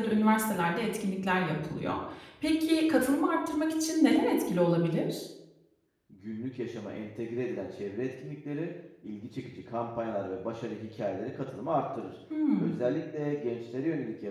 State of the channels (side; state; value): both; identical; correlation 1.00